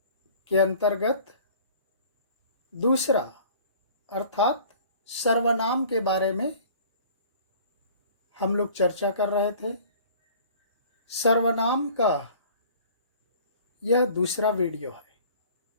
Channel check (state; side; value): inverted; both; correlation -0.49